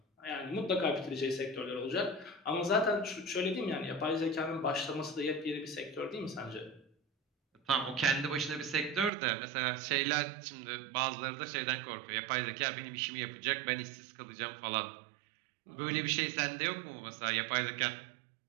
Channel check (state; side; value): drops out; left; at 9.1 s